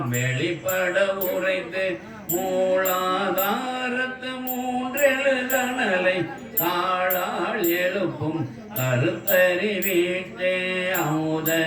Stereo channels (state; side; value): identical; both; correlation 1.00